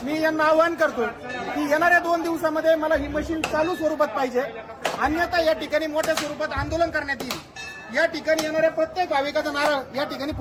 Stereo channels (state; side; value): identical; both; correlation 1.00